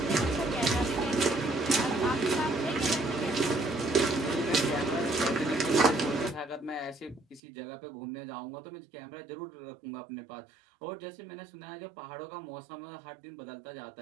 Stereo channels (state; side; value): drops out; left; at 7.4 s